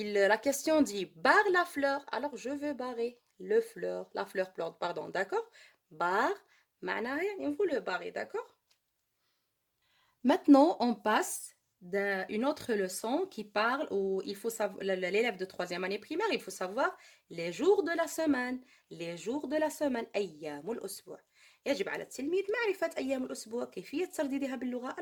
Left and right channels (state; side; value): identical; both; correlation 1.00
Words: question dit barre la fleur alors je veux barrer la fleur pardon d'accord barre معناها يعني vous le barrez d'accord maintenant on passe d'une autre leçon qui parle où il faut savoir l'élève de 3e année primaire il faut savoir les jours de la semaine أيام الأسبوع يجب على التلميذ معرفة أيام الأسبوع كيفية ترديدها باللغة